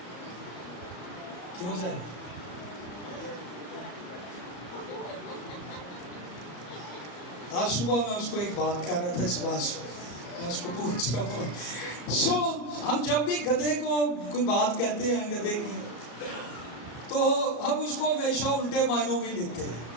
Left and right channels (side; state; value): right; late; 34 ms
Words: کیوں سر؟ آج صبح میں اس کو ایک بات کر رہا تھا، اس بات سے میں اس کو پوچھ رہا ہوں ہم جب بھی گدھے کو کوئی بات کہتے ہیں گدھے کی، تو ہم اس کو ہمیشہ الٹے معنوں میں لیتے ہیں،